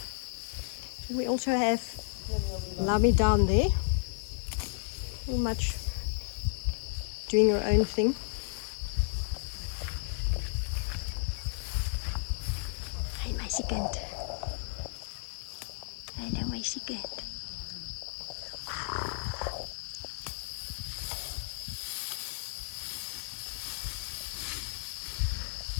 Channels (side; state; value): right; silent; 56 dB below the other